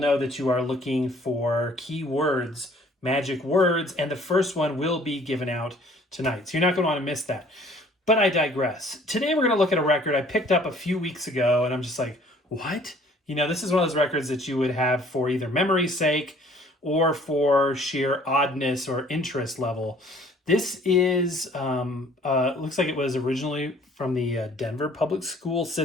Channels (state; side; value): normal; both; correlation 0.55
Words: that you are looking for keywords, magic words, and the first one will be given out tonight. So you're not going to want to miss that. But I digress. Today we're going to look at a record I picked up a few weeks ago, and I'm just like, what? You know, this is one of those records that you would have for either memory's sake or for sheer oddness or interest level. This is, looks like it was originally from the Denver public school